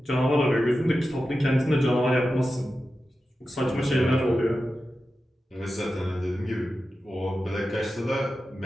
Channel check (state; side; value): normal; both; correlation 0.92